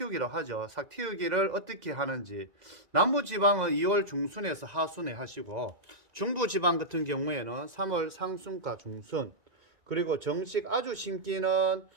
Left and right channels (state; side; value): late; left; 1.9 ms